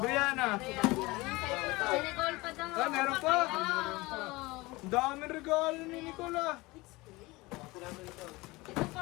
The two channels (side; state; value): right; quieter; 22.0 dB